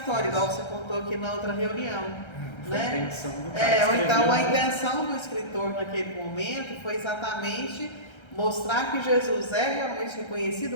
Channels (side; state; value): right; late; 1.3 ms